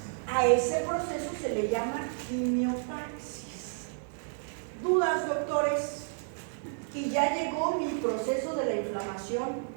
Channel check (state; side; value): silent; left; digital silence